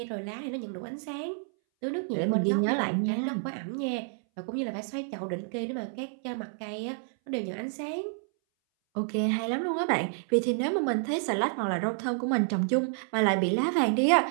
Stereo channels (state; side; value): silent; left; 58 dB below the other